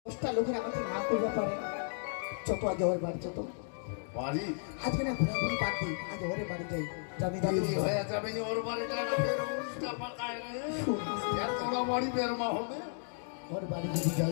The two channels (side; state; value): right; silent; digital silence